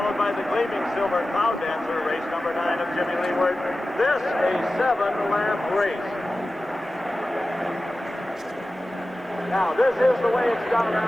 by the Gleaming Silver Cloud Dancer, race number 9 of Jimmy Leeward. This a 7-lap race. Now, this is the way it's done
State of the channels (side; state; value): both; normal; correlation 0.95